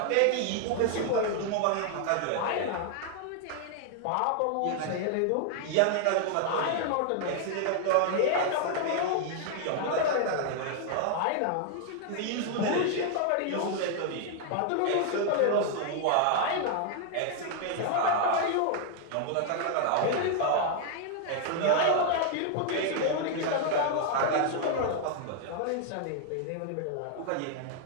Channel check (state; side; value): different; both; correlation 0.00